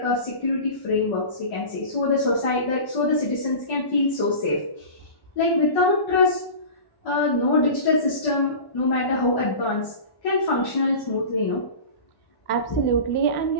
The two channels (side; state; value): right; late; 1.1 ms